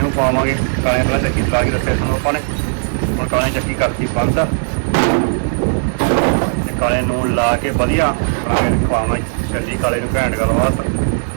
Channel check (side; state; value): left; silent; 62 dB below the other